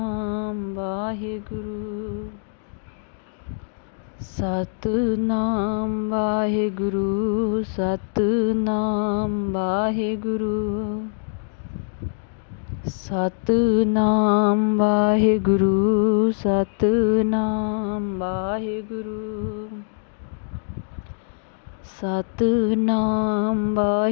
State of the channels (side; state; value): right; silent; 63 dB below the other